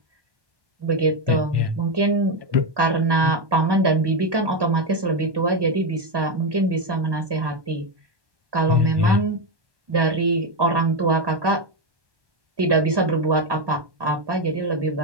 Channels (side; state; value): left; late; 1.2 ms